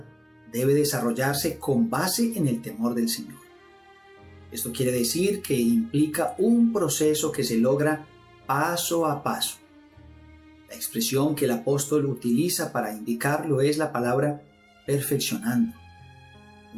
debe desarrollarse con base en el temor del Señor. Esto quiere decir que implica un proceso que se logra paso a paso. La expresión que el apóstol utiliza para indicarlo es la palabra perfeccionando,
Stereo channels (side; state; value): both; identical; correlation 1.00